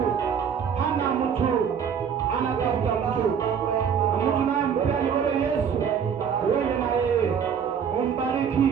Hana mtu, anatafuta mtu. Na mtu naye mpea ni wewe Yesu. Wewe na yeye umbariki,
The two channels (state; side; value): quieter; left; 7.4 dB